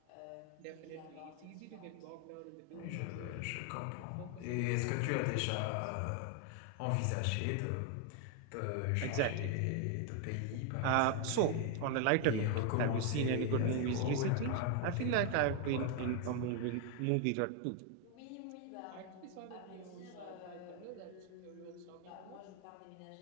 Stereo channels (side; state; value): both; different; correlation 0.01